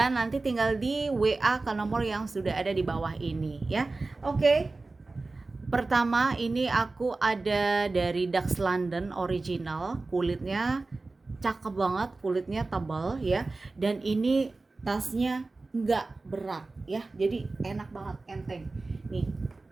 nanti tinggal di WA ke nomor yang sudah ada di bawah ini ya. Oke. Pertama ini aku ada dari Dax London original, kulitnya cakep banget, kulitnya tebal ya. Dan ini tasnya nggak berat ya, jadi enak banget, enteng. Nih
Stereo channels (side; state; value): left; quieter; 3.5 dB